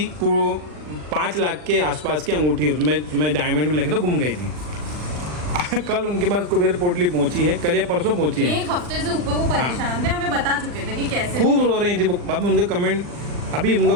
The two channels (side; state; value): left; late; 40 ms